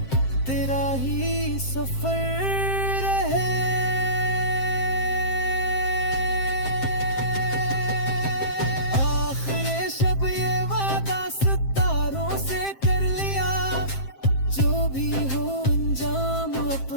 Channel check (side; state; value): right; late; 7.6 ms